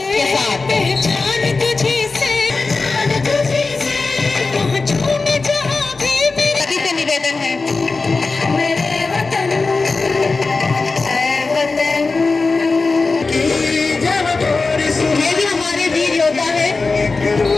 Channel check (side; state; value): right; quieter; 3.9 dB